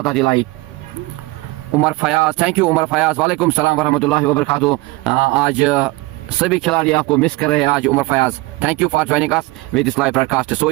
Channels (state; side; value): quieter; left; 22.9 dB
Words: दिलाई। उमर फयाज, थैंक यू उमर फयाज वालेकुम सलाम वरहमतुल्लाहि वबरकातुहू। आज सभी खिलाड़ी आपको मिस कर रहे हैं आज Umar Fayaz. Thank you for joining us with this live broadcast. So